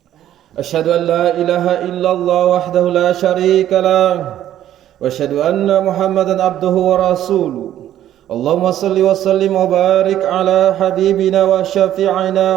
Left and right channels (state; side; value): quieter; left; 11.9 dB